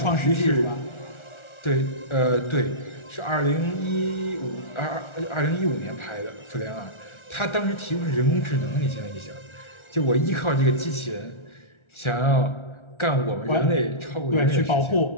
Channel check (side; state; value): right; late; 1.4 ms